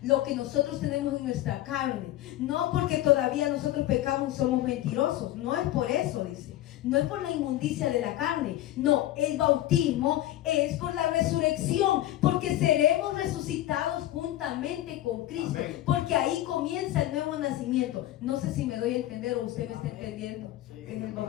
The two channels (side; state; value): right; quieter; 14.5 dB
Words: lo que nosotros tenemos en nuestra carne, no porque todavía nosotros pecamos y somos mentirosos, no es por eso, dice, no es por la inmundicia de la carne, no, el bautismo es por la resurrección, porque seremos resucitados juntamente con Cristo. Amén. Porque ahí comienza el nuevo nacimiento. No sé si me doy a entender o usted me está entendiendo. Sí. En el